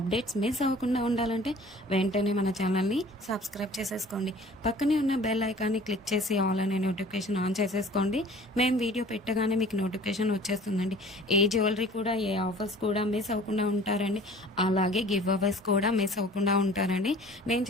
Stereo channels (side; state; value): both; normal; correlation 0.48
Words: అప్డేట్స్ మిస్ అవ్వకుండా ఉండాలంటే వెంటనే మన ఛానల్‌ని సబ్స్క్రైబ్ చేసేసుకోండి. పక్కనే ఉన్న బెల్ ఐకాన్ని క్లిక్ చేసి ఆల్ అనే నోటిఫికేషన్ ఆన్ చేసేసుకోండి. మేము వీడియో పెట్టగానే మీకు నోటిఫికేషన్ వచ్చేస్తుందండి. ఏ జ్యువెలరీ కూడా ఏ ఆఫర్స్ కూడా మిస్ అవ్వకుండా ఉంటారండి. అలాగే గివ్ అవేస్ కూడా మిస్ అవ్వకుండా ఉంటారండి. నేను